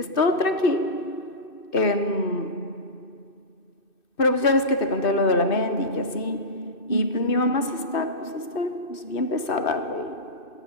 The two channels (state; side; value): late; right; 2.6 ms